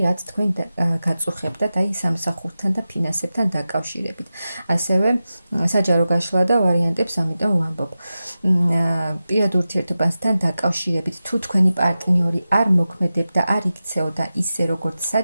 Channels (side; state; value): both; inverted; correlation -0.93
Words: რაც თქვენ გაწუხებდათ აი სამსახურთან და ფინანსებთან დაკავშირებით. ასევე საჯარო გაშლა და ვარიანტებს ამიტომ ვამბობ. პირად ურთიერთობასთან დაკავშირებით, თუ თქვენი პარტნიორი არ მოქმედებდა, არ იქცეოდა ისე, როგორც